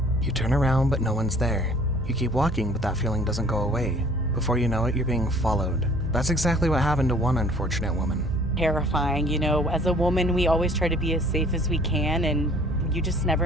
You turn around but no one's there. You keep walking but that feeling doesn't go away. Before you know it, you're being followed. That's exactly what happened to one unfortunate woman. Terrifying, as a woman we always try to be as safe as we can and you just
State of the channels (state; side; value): normal; both; correlation 0.54